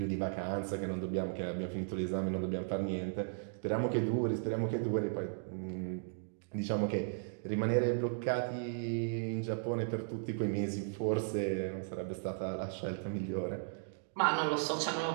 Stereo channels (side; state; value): left; silent; digital silence